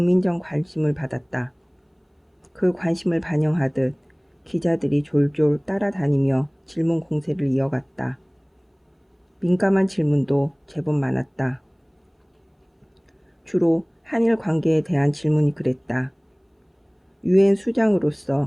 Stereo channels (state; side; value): identical; both; correlation 1.00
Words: 관심을 받았다. 그 관심을 반영하듯 기자들이 졸졸 따라다니며 질문 공세를 이어갔다. 민감한 질문도 제법 많았다. 주로 한일 관계에 대한 질문이 그랬다. 유엔